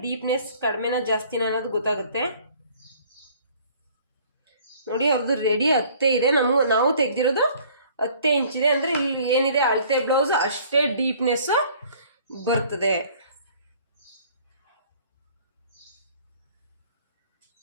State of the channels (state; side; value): inverted; both; correlation -0.55